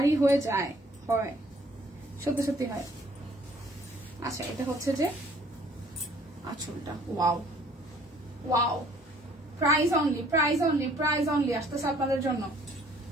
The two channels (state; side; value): normal; both; correlation 0.58